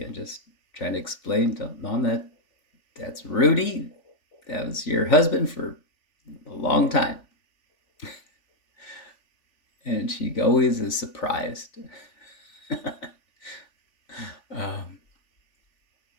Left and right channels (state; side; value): late; right; 3.4 ms